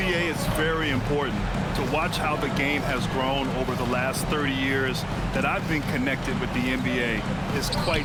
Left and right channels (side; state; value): both; identical; correlation 1.00